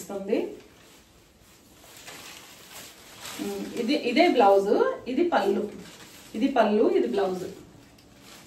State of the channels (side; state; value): both; identical; correlation 1.00